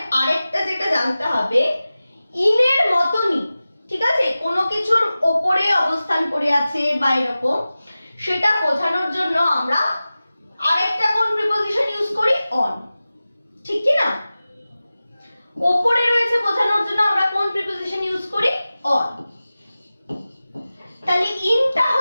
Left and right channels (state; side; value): inverted; both; correlation -0.96